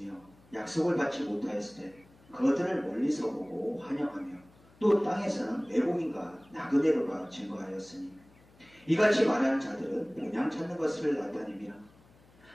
약속을 받지 못하였을 때 그것들을 멀리서 보고 환영하며 또 땅에서는 외국인과 나그네로가 증거하였으니 이같이 말하는 자들은 본향 찾는 것을 나타냅니다.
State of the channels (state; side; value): noise; left; hum, 28 dB below the sound